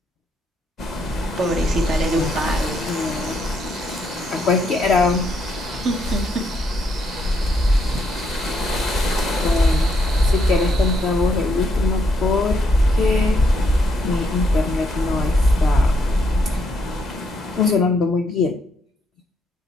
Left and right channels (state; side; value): normal; both; correlation 0.75